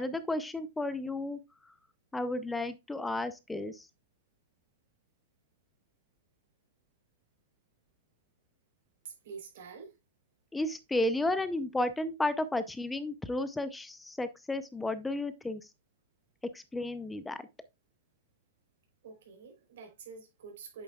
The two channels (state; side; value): normal; both; correlation 0.78